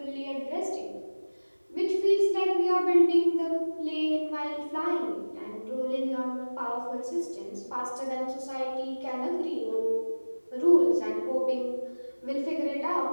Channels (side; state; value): both; inverted; correlation -1.00